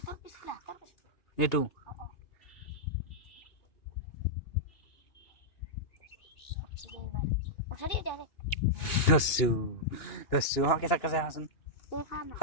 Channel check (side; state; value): right; late; 2.8 ms